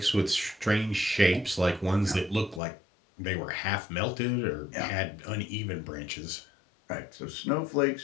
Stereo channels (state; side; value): drops out; right; at 2.6 s